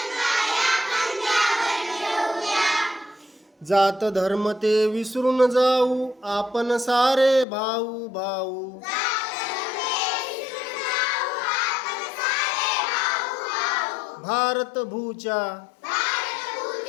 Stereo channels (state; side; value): drops out; right; at 7.5 s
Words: जात धर्म ते विसरून जाऊ आपण सारे भाऊ भाऊ भारत भूच्या